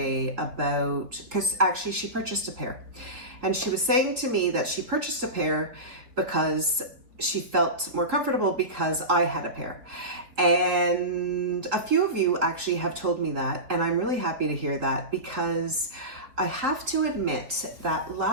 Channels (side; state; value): left; late; 4.0 ms